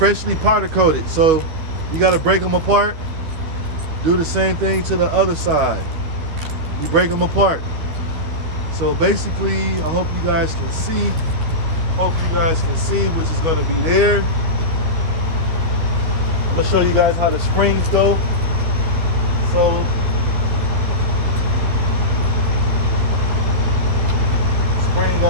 powder coated, so you gotta break them apart. Do the same thing to the other side. You break them apart. So basically, I hope you guys can see. Hope you guys can see, which is gonna be there. I'm gonna show you guys how the springs go. So, spring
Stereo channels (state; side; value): late; left; 12 ms